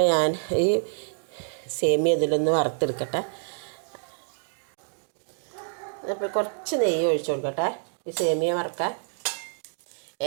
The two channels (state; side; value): silent; left; digital silence